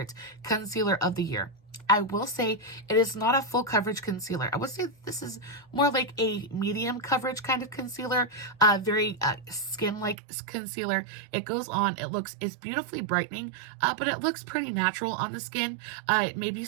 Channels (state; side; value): drops out; left; at 10.2 s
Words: concealer of the year. I will say it is not a full coverage concealer. I would say this is more like a medium coverage kind of concealer, very skin-like concealer. It goes on, it's beautifully brightening, but it looks pretty natural on the skin. Maybe